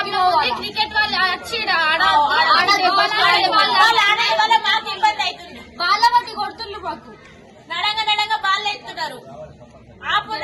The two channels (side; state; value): both; identical; correlation 1.00